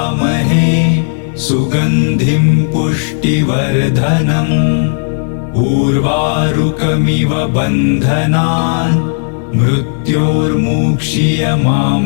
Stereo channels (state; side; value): silent; right; digital silence